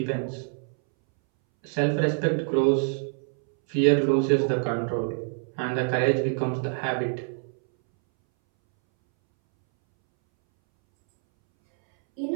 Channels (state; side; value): silent; left; 61 dB below the other